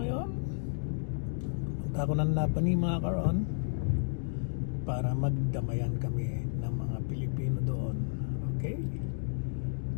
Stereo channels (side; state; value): right; silent; digital silence